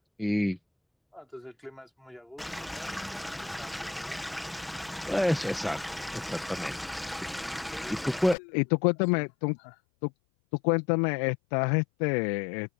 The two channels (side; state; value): right; drops out; at 8.3 s